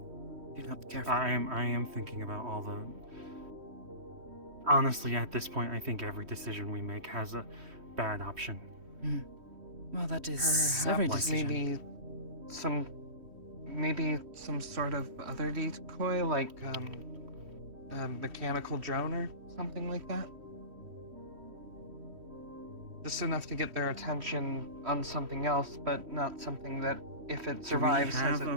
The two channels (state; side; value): late; left; 3.1 ms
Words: if you're not careful. I am thinking about all the... Honestly, at this point, I think every decision we make has a bad option. Well, that is Perhaps every decision. maybe some sort of other decoy, like a mechanical drone or something like that. Just enough to get their attention on something else, but not something that, if it survives, has have a a